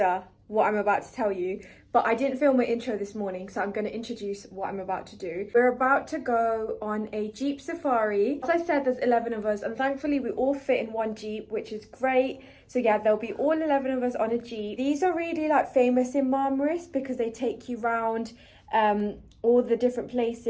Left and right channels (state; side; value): identical; both; correlation 1.00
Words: what I'm about to tell you, but I didn't film my intro this morning, so I'm going to introduce what I'm about to do. We're about to go on a Jeep safari. As I said, there's 11 of us, and thankfully we all fit in one Jeep, which is great. So yeah, there'll be all 11 of us on a Jeep. These are really like famous in Marmaris because they take you round all the different